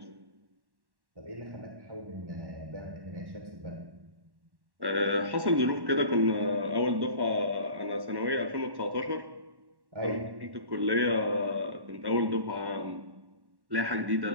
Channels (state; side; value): late; left; 1.1 ms